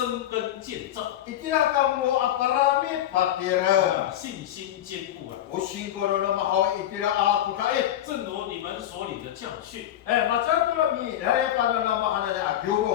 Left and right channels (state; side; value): quieter; right; 12.0 dB